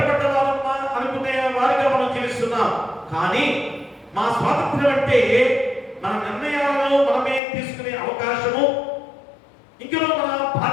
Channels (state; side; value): drops out; right; at 7.4 s